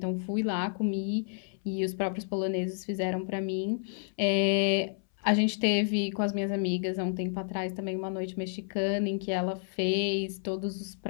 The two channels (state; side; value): silent; right; 58 dB below the other